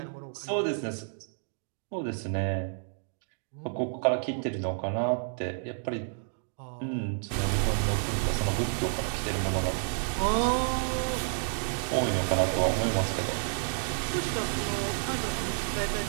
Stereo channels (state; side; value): silent; left; digital silence